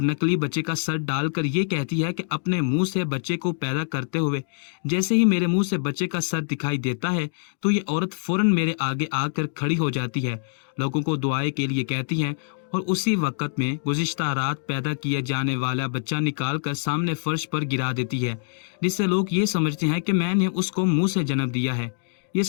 नकली बच्चे का सर डालकर ये कहती है कि अपने मुंह से बच्चे को पैदा करते हुए जैसे ही मेरे मुंह से बच्चे का सर दिखाई देता है तो ये औरत फौरन मेरे आगे आकर खड़ी हो जाती है, लोगों को दुआएं के लिए कहती है और उसी वक्त में गुज़िश्ता रात पैदा किया जाने वाला बच्चा निकाल कर सामने फर्श पर गिरा देती है, जिससे लोग ये समझते हैं कि मैंने उसको मुंह से जन्म दिया है। ये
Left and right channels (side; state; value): right; silent; digital silence